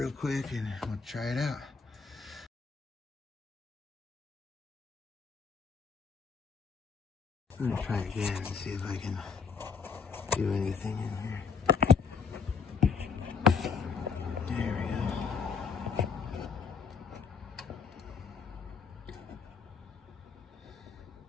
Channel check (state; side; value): quieter; right; 5.7 dB